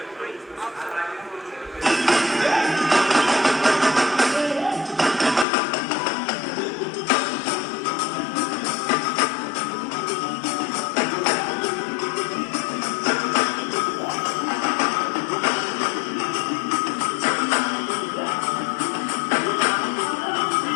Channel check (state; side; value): drops out; right; at 5.5 s